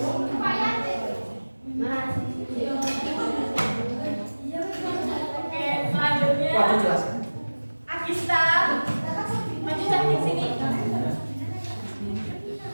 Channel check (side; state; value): both; inverted; correlation -1.00